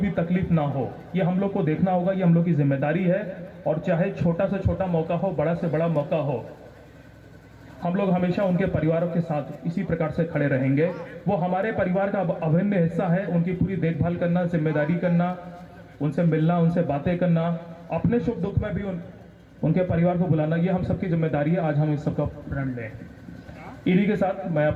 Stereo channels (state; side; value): identical; both; correlation 1.00